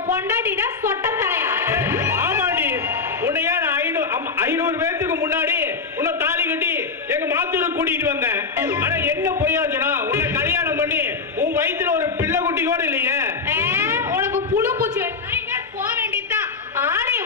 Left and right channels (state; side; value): quieter; right; 4.7 dB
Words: பொண்டாட்டிட சொட்ட தலையா? ஆமாடி, உன்னைய 500 பேத்துக்கு முன்னாடி உன்னை தாலி கட்டி எங்க மாத்தூருக்கு கூட்டிட்டு வந்தேன். ஆனா என்ன பொய்யாச்சுனா உன்னை கல்யாணம் பண்ணி உன் வயித்துல ஒரு பிள்ளை குட்டி கூட இல்லையே. உனக்கு புழு பூச்சி போக வேண்டியதுதான். ஆணைய